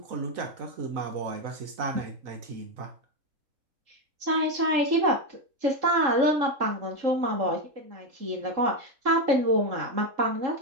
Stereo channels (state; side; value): late; left; 3.7 ms